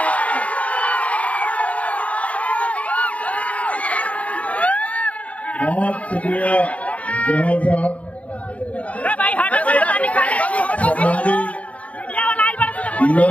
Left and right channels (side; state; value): right; late; 0.066 ms